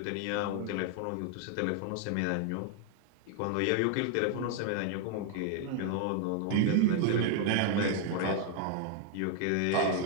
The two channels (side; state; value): both; different; correlation 0.00